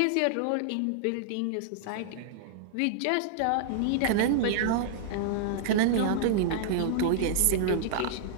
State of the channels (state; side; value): different; both; correlation -0.01